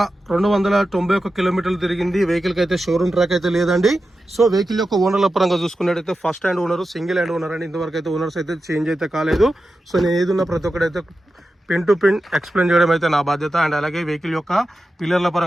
కిలోమీటర్లు తిరిగింది. వెహికల్కి అయితే షోరూమ్ ట్రాక్ అయితే లేదండి. సో వెహికల్ యొక్క ఓనర్ల పరంగా చూసుకున్నట్టయితే first hand owner, single hand owner అండి. ఇంతవరకు అయితే ఓనర్స్ అయితే చేంజ్ అయితే కాలేదు. సో నేను ఏదున్నా ప్రతి ఒక్కడైతే పిన్ టు పిన్ ఎక్స్ప్లెయిన్ చేయడం అయితే నా బాధ్యత. అండ్ అలాగే వెహికల్ యొక్క పిల్లర్ల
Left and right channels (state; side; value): normal; both; correlation 0.91